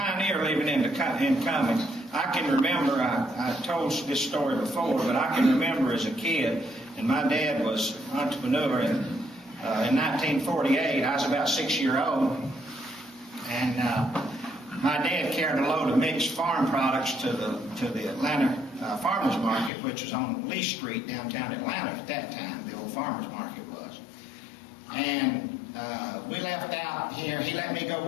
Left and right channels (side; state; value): right; drops out; at 19.7 s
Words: living in Cumming. I can remember, I told this story before, but I can remember as a kid, and my dad was an entrepreneur in 1948. I was about 6 years old, and my dad carried a load of mixed farm products to the Atlanta Farmers Market, which was on Lee Street, downtown Atlanta at that time. The old Farmers Market was. And we left out here. He let me go